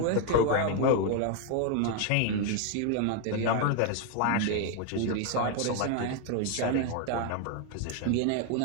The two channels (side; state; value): both; different; correlation 0.01